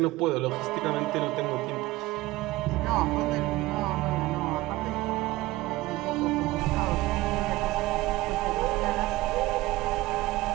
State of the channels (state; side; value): quieter; left; 18.6 dB